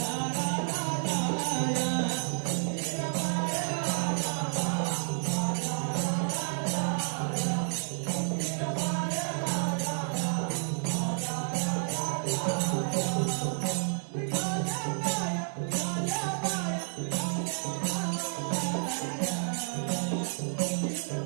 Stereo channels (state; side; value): silent; left; digital silence